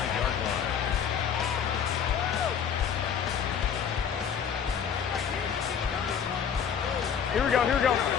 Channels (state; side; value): quieter; right; 7.7 dB